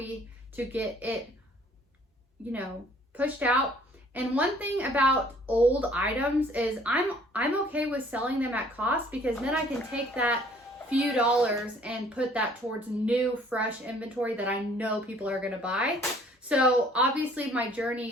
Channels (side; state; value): both; normal; correlation 0.58